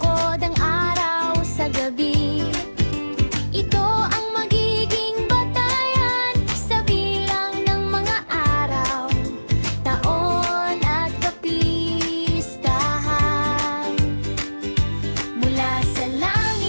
ang araw sa gabi. Ito ang magiging batayan sa bilang ng mga araw, taon at kapistahan. Mula sa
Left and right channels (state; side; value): inverted; both; correlation -1.00